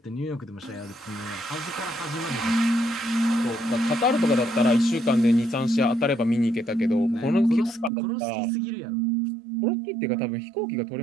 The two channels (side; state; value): left; drops out; at 7.9 s